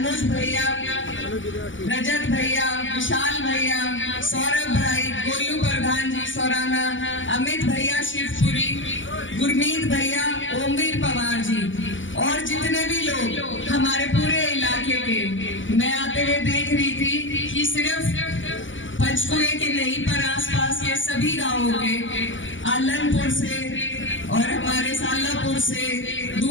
भैया, रजत भैया, विशाल भैया, सौरभ भाई, गोलू प्रधान जी सौराना, अमित भैया शिवपुरी, गुरमीत भैया, ओमवीर पवार जी और जितने भी लोग हमारे पूरे इलाके के। मैं आते हुए देख रही थी कि सिर्फ पंचकुले के नहीं पर आसपास के सभी गांवों के, आलनपुर से और हमारे सालापुर से,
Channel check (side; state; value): right; late; 0.56 ms